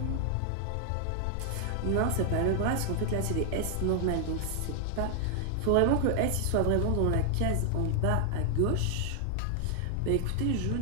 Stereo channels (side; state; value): both; different; correlation 0.00